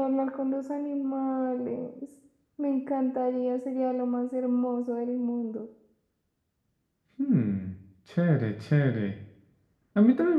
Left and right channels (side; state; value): both; identical; correlation 1.00